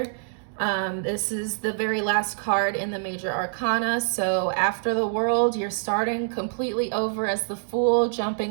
This is the very last card in the major arcana. So after the World, you're starting completely over as the Fool,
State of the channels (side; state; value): left; silent; digital silence